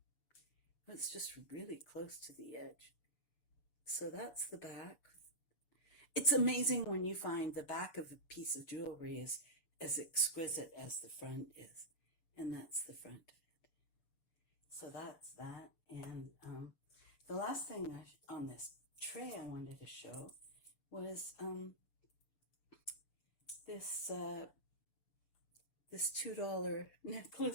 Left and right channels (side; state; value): right; late; 6.9 ms